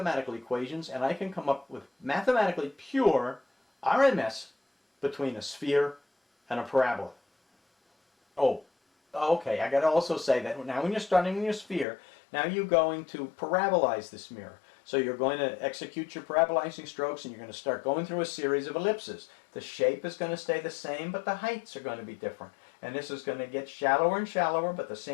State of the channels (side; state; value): right; drops out; at 11.9 s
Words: equations and I can come up with mathematically pure RMS between a sphere and a parabola. Oh, okay, I got to also say that now when you're starting with your sphere, now you're going to parabolize this mirror. So you're going to execute your parabolizing strokes and you're going to start going through a series of ellipses. The shape is going to stay the same, but the heights are going to be different. And this is going to get shallower and shallower, but the